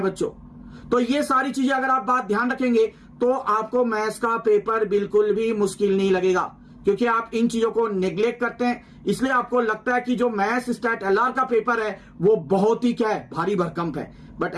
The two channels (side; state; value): both; identical; correlation 1.00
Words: बच्चों। तो ये सारी चीजें अगर आप बात ध्यान रखेंगे तो आपको मैथ्स का पेपर बिल्कुल भी मुश्किल नहीं लगेगा, क्योंकि आप इन चीजों को नेग्लेक्ट करते हैं। इसलिए आपको लगता है कि जो मैथ्स स्टैट एलआर का पेपर है वो बहुत ही क्या है, भारी भरकम है, बट